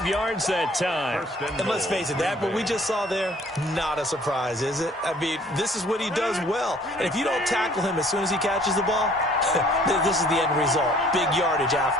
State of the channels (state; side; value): normal; both; correlation 0.57